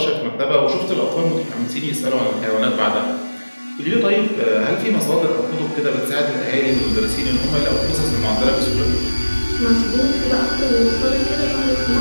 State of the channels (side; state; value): both; inverted; correlation -1.00